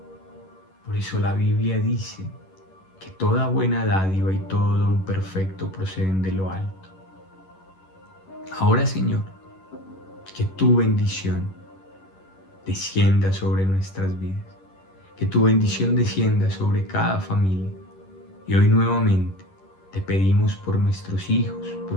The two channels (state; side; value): late; right; 11 ms